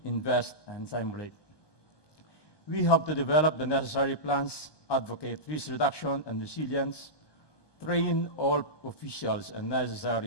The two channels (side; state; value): right; late; 1.2 ms